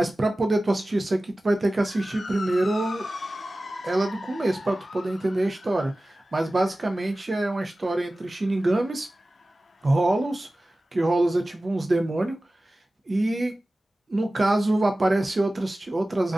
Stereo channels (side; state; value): both; normal; correlation 0.96